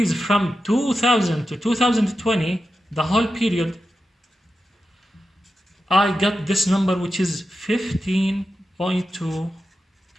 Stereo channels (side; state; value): both; normal; correlation 0.90